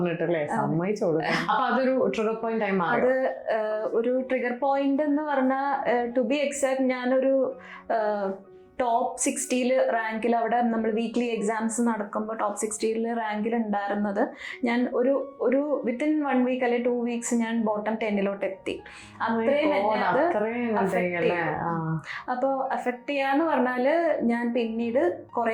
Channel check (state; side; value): identical; both; correlation 1.00